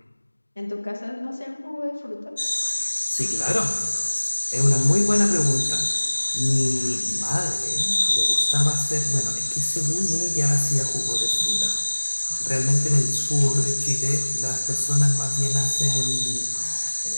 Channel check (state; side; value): inverted; both; correlation -1.00